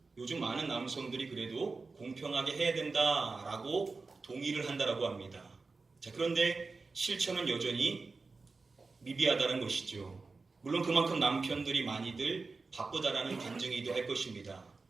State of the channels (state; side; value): quieter; left; 4.0 dB